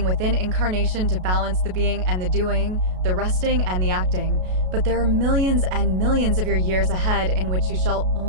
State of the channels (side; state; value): left; late; 33 ms